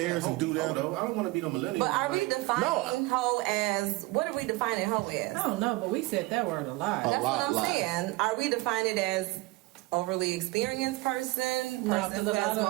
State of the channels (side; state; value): left; quieter; 21.5 dB